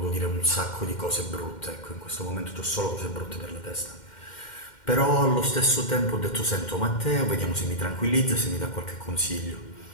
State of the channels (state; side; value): late; right; 2.1 ms